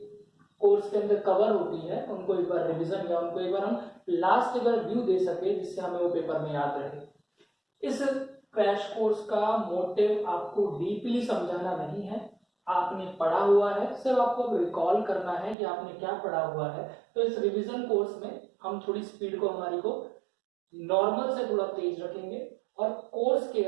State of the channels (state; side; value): drops out; left; at 15.6 s